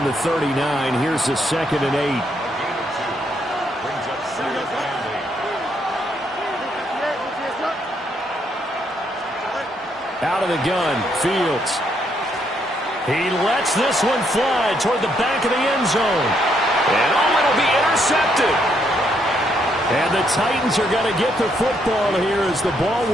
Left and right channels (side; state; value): both; normal; correlation 0.74